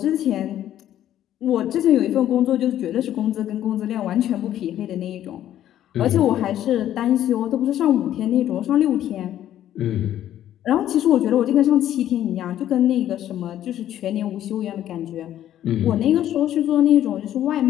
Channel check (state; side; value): quieter; right; 11.8 dB